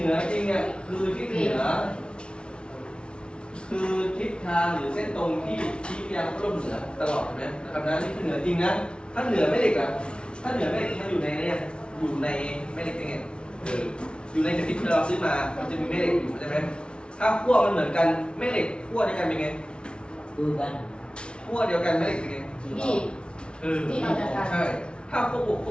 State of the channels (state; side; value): late; right; 0.057 ms